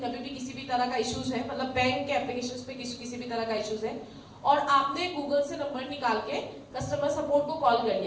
कभी भी किसी भी तरह का इश्यूज है, मतलब बैंक के एप्लीकेशंस पे किसी भी तरह का इश्यूज है, और आपने गूगल से नंबर निकाल के कस्टमर सपोर्ट को कॉल कर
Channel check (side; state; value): both; identical; correlation 1.00